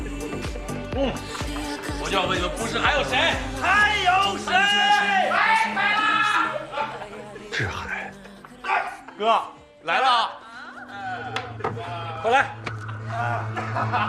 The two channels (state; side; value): identical; both; correlation 1.00